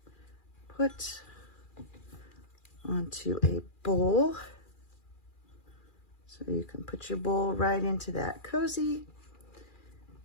put onto a bowl. So you can put your bowl right into that cozy.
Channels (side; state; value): right; late; 2.4 ms